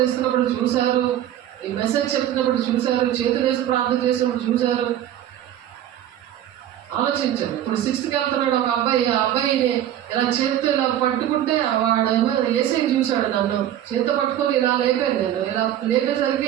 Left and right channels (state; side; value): quieter; left; 11.6 dB